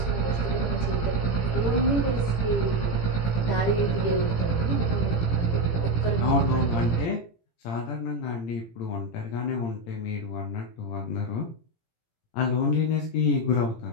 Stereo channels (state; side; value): late; right; 18 ms